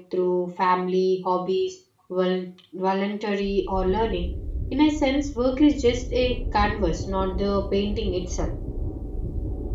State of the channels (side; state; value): both; identical; correlation 1.00